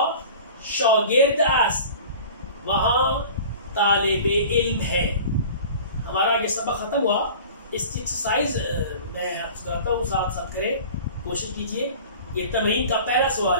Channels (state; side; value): inverted; both; correlation -0.41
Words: شاگرد است، وہاں طالب علم ہے. ہمارا یہ سبق ختم ہوا. اس کی ایکسرسائز میں آپ کو کراتا ہوں، ساتھ ساتھ کریں، کوشش کیجئے. یہ تمرین کا پہلا